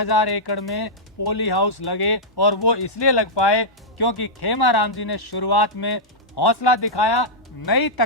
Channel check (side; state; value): both; normal; correlation -0.09